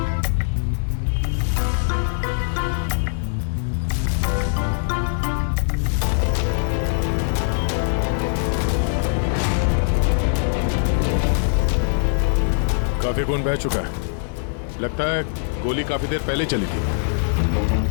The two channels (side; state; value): right; silent; digital silence